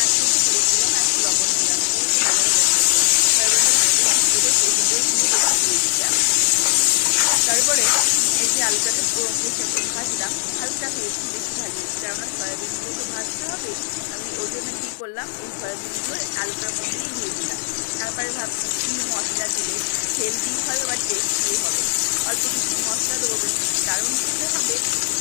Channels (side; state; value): right; silent; 63 dB below the other